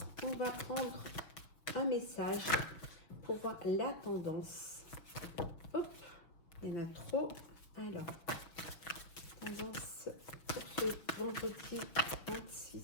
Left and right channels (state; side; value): late; right; 6.1 ms